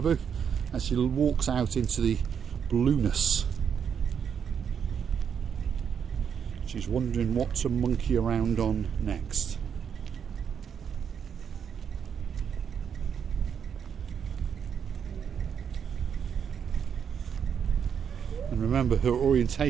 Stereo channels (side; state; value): left; quieter; 7.5 dB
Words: Labu as she walks out into the blueness. She's wondering what to monkey around on next. And remember, her